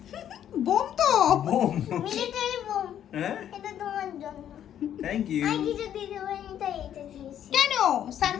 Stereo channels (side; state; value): right; quieter; 10.3 dB